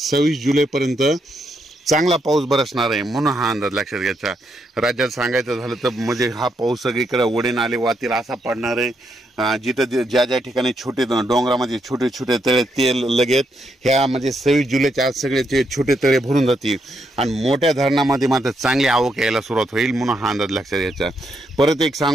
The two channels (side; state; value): both; normal; correlation 0.78